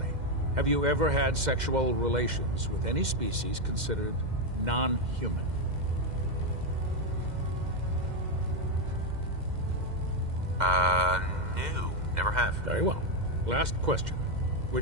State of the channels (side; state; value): left; late; 2.1 ms